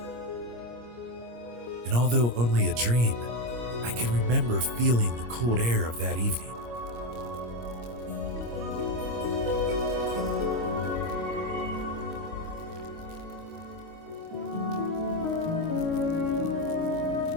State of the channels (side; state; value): left; late; 25 ms